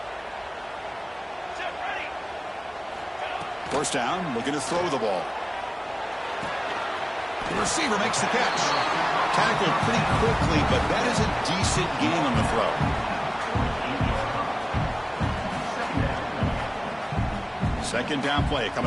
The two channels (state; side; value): identical; both; correlation 1.00